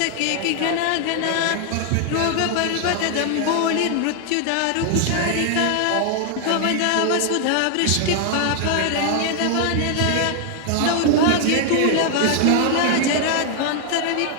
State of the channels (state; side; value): different; both; correlation 0.00